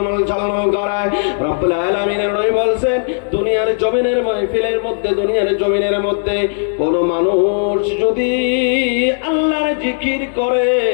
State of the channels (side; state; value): right; silent; digital silence